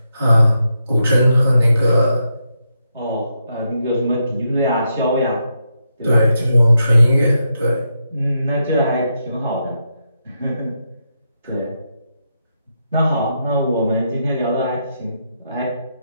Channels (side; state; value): both; inverted; correlation -0.83